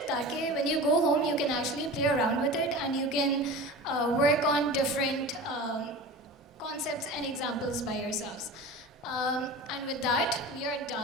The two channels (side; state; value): both; normal; correlation 0.34